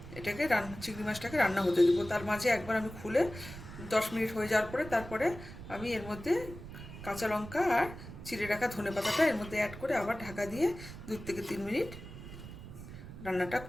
এটাকে চিংড়ি মাছটাকে রান্না হতে দেবো। তার মাঝে একবার আমি খুলে 10 মিনিট হয়ে যাওয়ার পরে তারপরে আমি এর মধ্যে কাঁচা লঙ্কা আর চিড়ে রাখা ধনেপাতাটা এর মধ্যে অ্যাড করে আবার ঢাকা দিয়ে 2 থেকে 3 মিনিট রান্নাটা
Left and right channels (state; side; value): noise; right; rumble, 13 dB below the sound